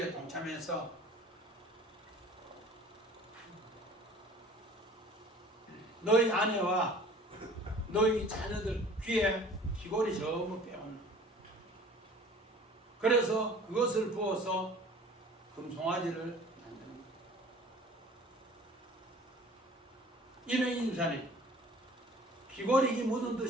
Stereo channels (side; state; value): both; normal; correlation 0.47